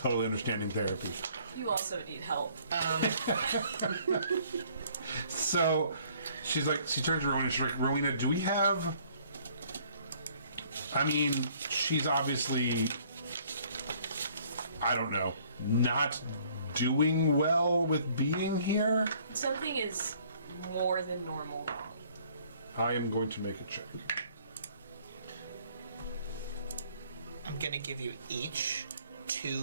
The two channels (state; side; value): inverted; both; correlation -0.60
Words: understanding therapy. You also need help. So, she's like, she turns to Rowena. She's like, Rowena, do we have? I mean, she's obviously, I don't know, not doing well with being here. Something is more than normal wrong. I am going to make a check. I'm gonna give you each